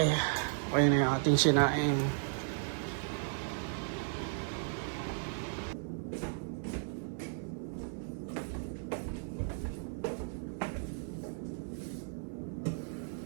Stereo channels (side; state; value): left; silent; 54 dB below the other